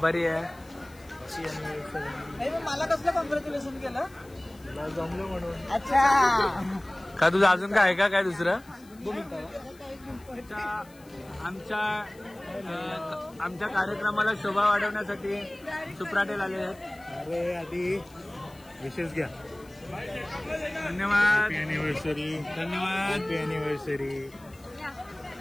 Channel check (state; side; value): noise; left; hiss, 26 dB below the sound